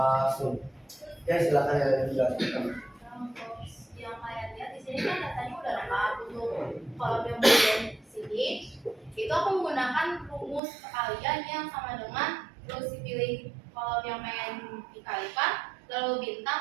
sum. Oke, silakan yang dijelaskan. Yang kalian lihat di sini kan datanya udah lengkap. Untuk kolom yang bagian sini itu aku menggunakan rumus perkalian yang sama dengan terus dipilih kolom yang pengen dikalikan, lalu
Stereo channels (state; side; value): drops out; left; at 10.6 s